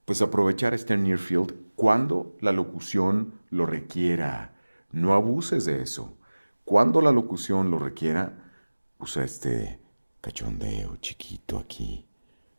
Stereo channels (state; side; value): inverted; both; correlation -1.00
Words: pues aprovechar este near field cuando la locución lo requiera. No abuses de eso. Cuando la locución lo requiera, usa este cachondeo chiquito aquí,